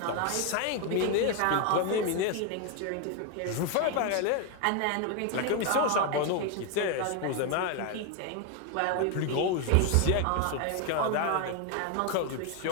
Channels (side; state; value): both; different; correlation 0.01